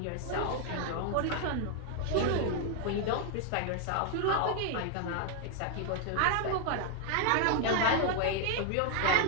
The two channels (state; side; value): different; both; correlation 0.00